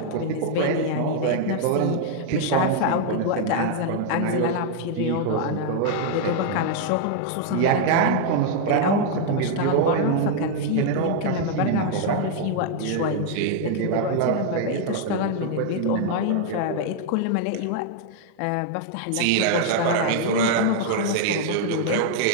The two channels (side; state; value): both; different; correlation 0.00